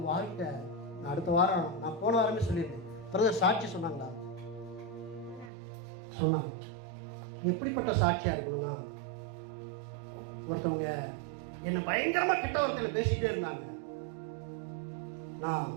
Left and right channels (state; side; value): drops out; left; at 5.5 s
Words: வாழ்க்கை, நான் அடுத்த வாரம், நான் போன வாரமே சொல்லியிருந்தேன், பிரதர் சாட்சி சொன்னாங்களா? சொன்னாங்க. எப்படிப்பட்ட சாட்சியா இருக்கணும்னா, ஒருத்தவங்க என்ன பயங்கரமா கெட்ட வார்த்தையில பேசிட்டே இருந்தாங்க, நான்